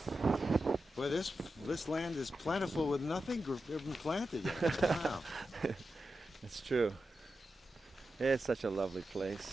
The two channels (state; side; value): normal; both; correlation 0.90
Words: Boy, this land is plentiful with nothing even planted yet. Wow. It's true. It's such a lovely